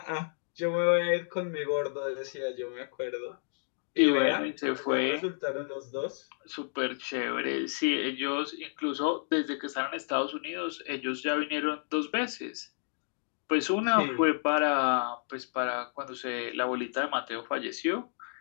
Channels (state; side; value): silent; right; digital silence